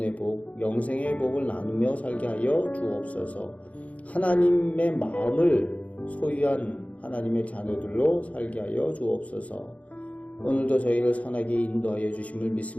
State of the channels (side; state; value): right; late; 0.067 ms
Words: 복, 영생의 복을 나누며 살게 하여 주옵소서. 하나님의 마음을 소유한 하나님의 자녀들로 살게 하여 주옵소서. 오늘도 저희를 선하게 인도하여 주심을